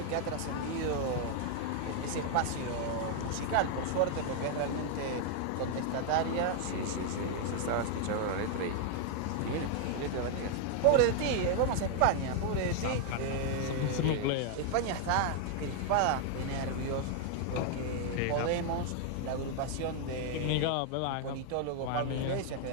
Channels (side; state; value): both; different; correlation 0.00